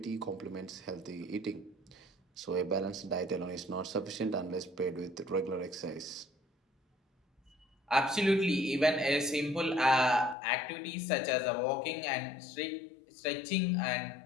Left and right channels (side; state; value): right; drops out; at 10.4 s